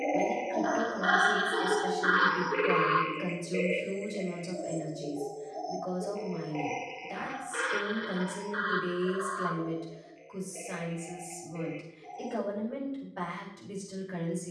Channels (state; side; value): identical; both; correlation 1.00